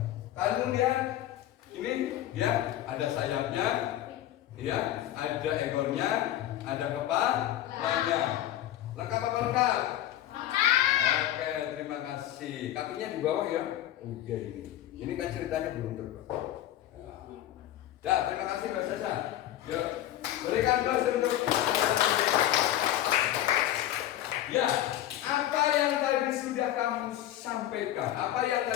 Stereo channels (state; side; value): quieter; right; 13.0 dB